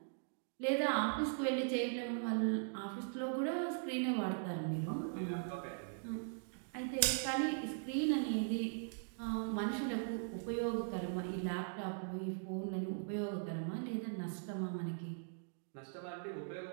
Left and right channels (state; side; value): silent; left; digital silence